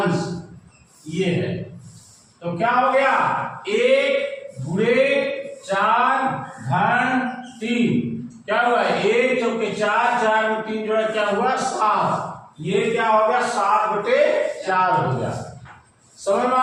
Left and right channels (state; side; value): identical; both; correlation 1.00